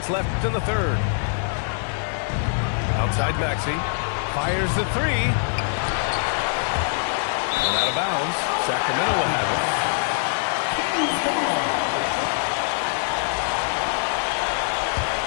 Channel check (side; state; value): right; silent; 61 dB below the other